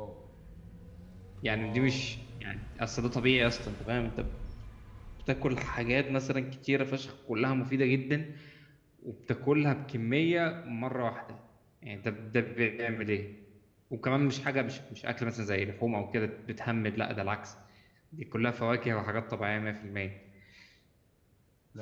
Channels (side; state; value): both; identical; correlation 1.00